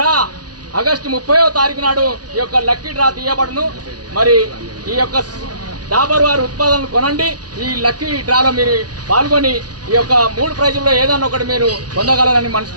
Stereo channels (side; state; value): left; late; 0.69 ms